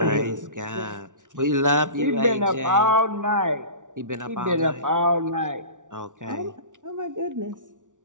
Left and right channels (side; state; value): left; late; 0.87 ms